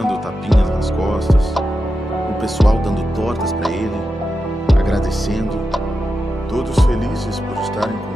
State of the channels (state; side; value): normal; both; correlation 0.89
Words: tapinhas nas costas, o pessoal dando tortas pra ele, agradecendo, todos felizes por estarem